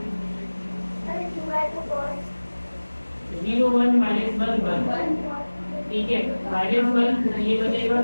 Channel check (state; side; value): inverted; both; correlation -1.00